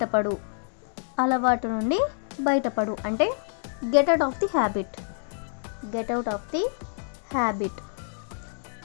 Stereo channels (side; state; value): right; silent; 60 dB below the other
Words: బయటపడు అంటే get out of the habit.